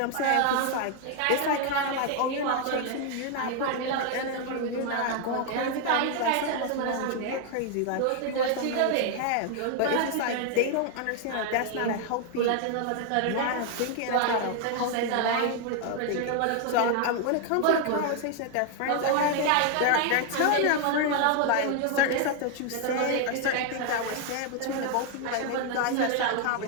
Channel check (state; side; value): different; both; correlation 0.00